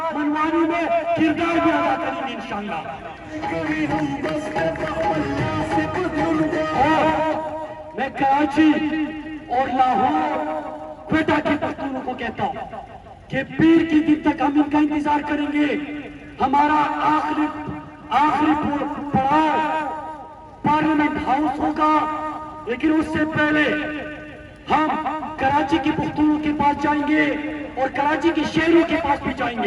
منوانے میں کردار بھی ادا کریں گے انشاءاللہ. میں کراچی اور لاہور کوئٹہ کے پختونوں کو کہتا ہوں کہ پیر کی دن تک ہم ان کا انتظار کریں گے. ہمارا آخری پڑاؤ پارلیمنٹ ہاؤس ہوگا, لیکن اس سے پہلے ہم کراچی کے پختونوں کے پاس جائیں گے اور کراچی کے شہروں کے پاس بھی جائیں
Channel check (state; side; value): identical; both; correlation 1.00